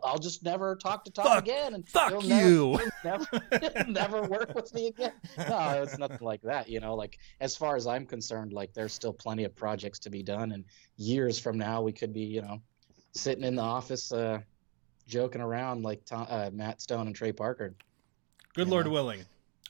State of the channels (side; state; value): left; quieter; 29.8 dB